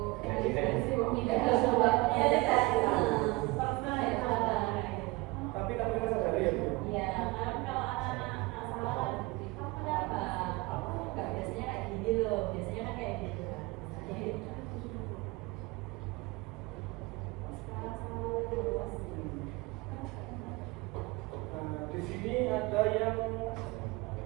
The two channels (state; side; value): quieter; left; 23.2 dB